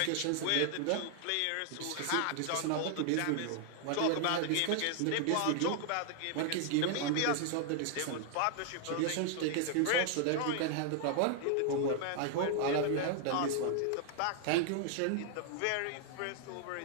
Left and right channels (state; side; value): different; both; correlation 0.00